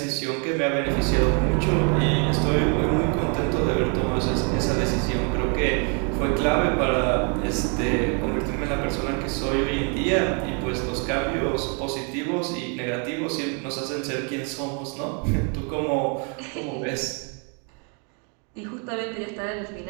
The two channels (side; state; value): left; quieter; 37.8 dB